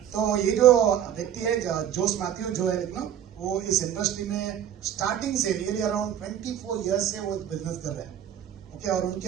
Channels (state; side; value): quieter; left; 10.1 dB